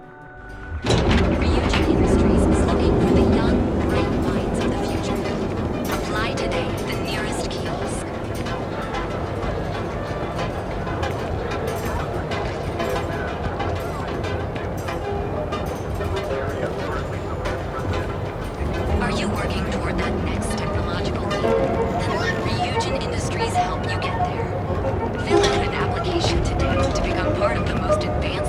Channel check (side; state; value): both; identical; correlation 1.00